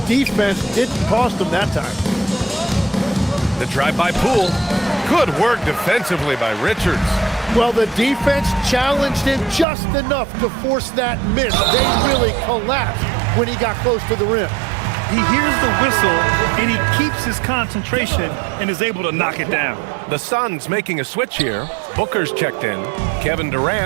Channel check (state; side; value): drops out; left; at 9.7 s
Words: defense didn't cost them that time. The drive by Poole. Good work defensively by Richards. Well, the defense challenged him just enough to force that miss. They really collapsed when he got close to the rim. He hears the whistle, and he keeps his concentration and is able to knock it down. The Suns making a switch here. Booker's checked in. Kevin